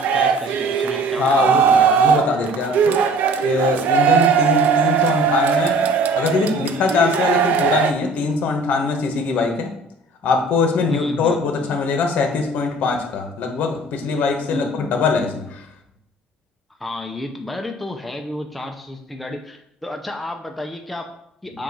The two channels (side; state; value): both; normal; correlation 0.49